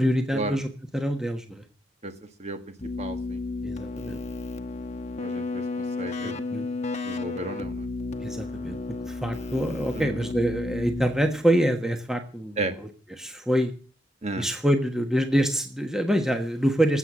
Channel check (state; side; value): normal; both; correlation 0.81